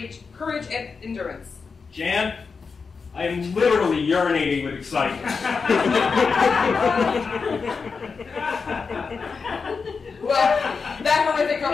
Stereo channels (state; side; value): quieter; right; 5.1 dB